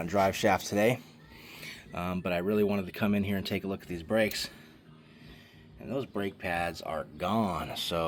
drive shaft today. But I really wanted to come in here and take a look at these brakes. And those brake pads are gone,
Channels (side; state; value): both; identical; correlation 1.00